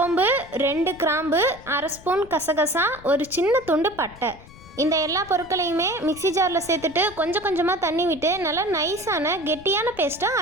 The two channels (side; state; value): left; noise; rumble, 20 dB below the sound